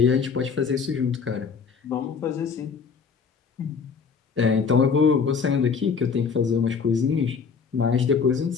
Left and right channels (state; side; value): quieter; right; 5.8 dB